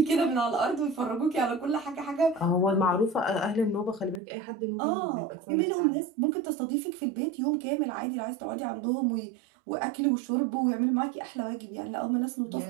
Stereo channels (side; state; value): left; drops out; at 4.2 s